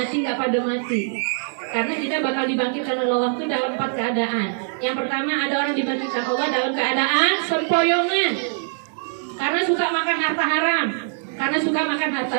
mati. Karena kita bakal dibangkitkan oleh Allah itu dalam 4 keadaan. Yang pertama ada orang dibangkitkan Allah dalam keadaan sempoyongan. Karena suka makan harta haram, karena suka makan harta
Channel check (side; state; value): left; silent; digital silence